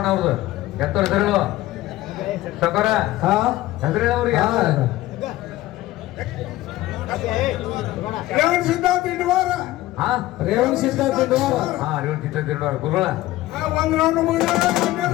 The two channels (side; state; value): right; quieter; 16.4 dB